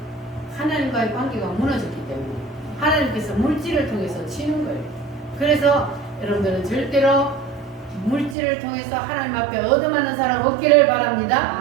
하나님과의 관계가 무너졌기 때문에. 하나님께서 물질을 통해서 치는 거예요. 그래서 여러분들은 절대로 물질을 통해서 하나님 앞에 얻어맞는 사람 없기를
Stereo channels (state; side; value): drops out; left; at 8.3 s